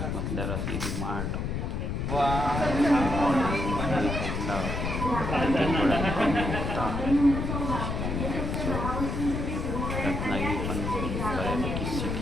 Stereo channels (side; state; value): left; noise; rumble, 2 dB below the sound